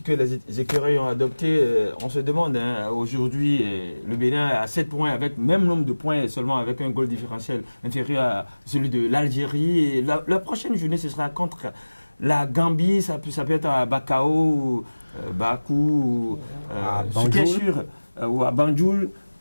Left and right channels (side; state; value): both; inverted; correlation -1.00